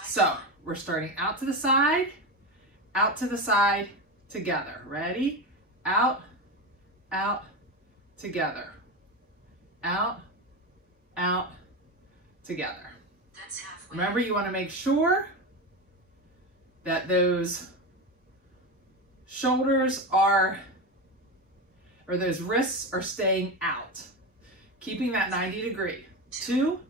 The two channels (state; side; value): normal; both; correlation 0.19